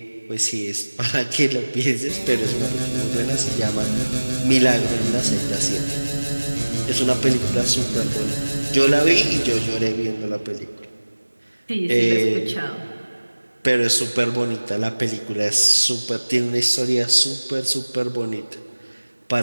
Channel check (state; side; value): inverted; both; correlation -1.00